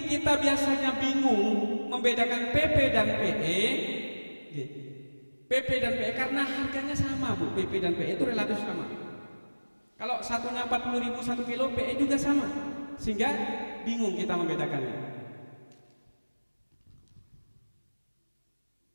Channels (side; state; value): both; inverted; correlation -1.00